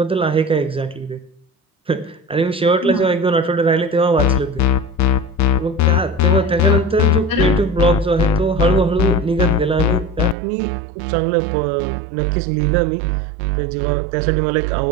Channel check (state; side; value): drops out; left; at 10.4 s